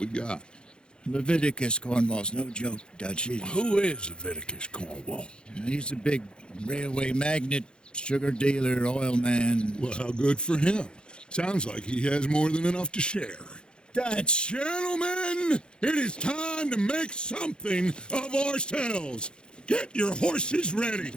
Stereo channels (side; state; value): right; late; 0.050 ms